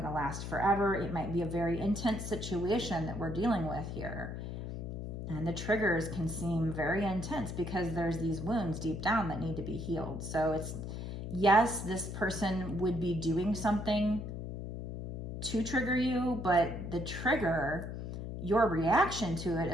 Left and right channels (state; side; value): noise; left; hum, 6 dB below the sound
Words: to last forever. It might be a very intense situation that we're dealing with here. And the triggers can seem very intense because there's these wounds deep down that need to be healed. So it's, yes, this person would be doing something to trigger you, but the trigger, your reaction to it